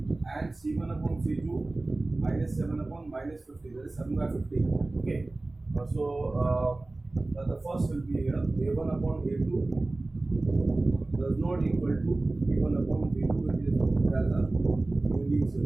and c1 upon c2, minus 7 upon minus 50, that is 7 by 50. Okay, so the first will be here, a1 upon a2 does not equal to b1 upon b2, it is as a unique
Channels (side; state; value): left; quieter; 3.0 dB